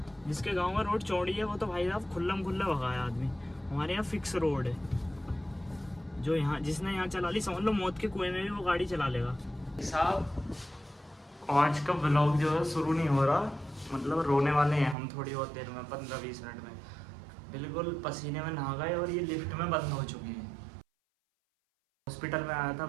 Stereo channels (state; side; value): drops out; left; at 15.0 s